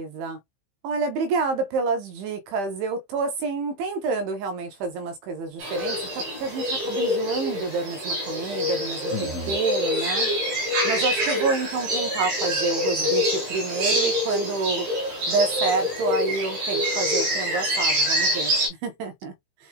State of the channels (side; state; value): left; late; 15 ms